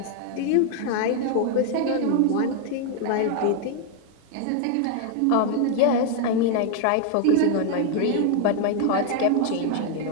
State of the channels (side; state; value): both; different; correlation 0.00